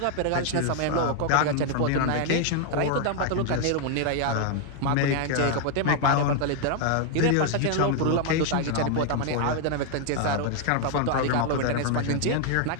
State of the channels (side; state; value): both; different; correlation 0.00